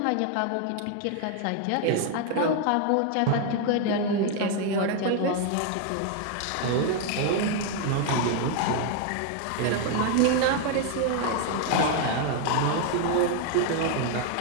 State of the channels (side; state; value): both; different; correlation 0.00